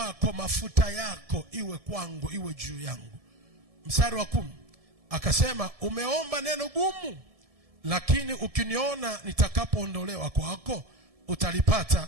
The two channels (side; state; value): left; late; 1.7 ms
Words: mafuta yako iwe kwangu, iwe juu yangu. Mstari wa 10. Akasema, umeomba neno gumu, lakini ukiniona nitakapoondolewa kwako